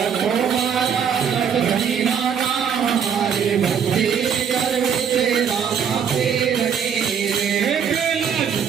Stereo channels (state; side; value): quieter; left; 7.5 dB